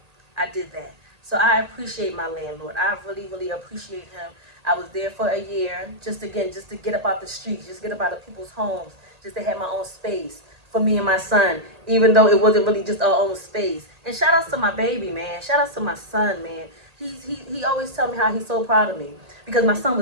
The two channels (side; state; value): left; late; 1.8 ms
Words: So I appreciate my landlord. I really, really appreciate him. I was there for a year, just to get up out the streets, just get up out of people's homes, just to have my own space for me and my son, even though it wasn't really just our own space. And shout outs to my baby, man. Shout outs to my son, man. He always tell me how he's so proud of me, because my son